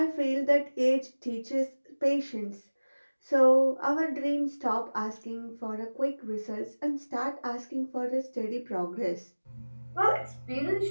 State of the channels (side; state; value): both; inverted; correlation -1.00